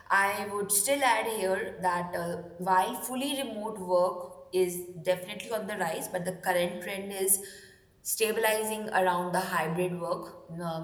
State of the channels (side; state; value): both; identical; correlation 1.00